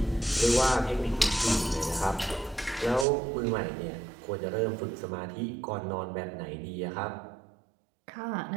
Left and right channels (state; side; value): drops out; left; at 3.1 s